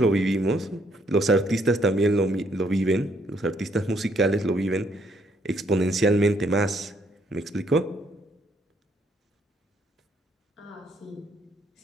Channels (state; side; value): normal; both; correlation 0.70